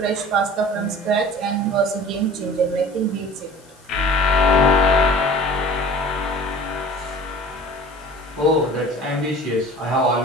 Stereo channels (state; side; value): noise; left; hiss, 27 dB below the sound